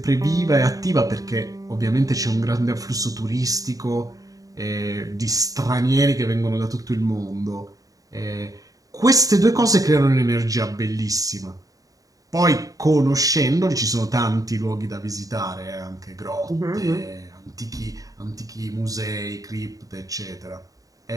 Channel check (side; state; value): left; late; 0.17 ms